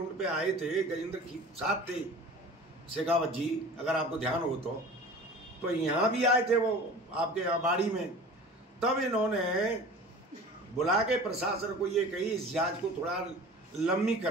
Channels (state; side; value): normal; both; correlation 0.40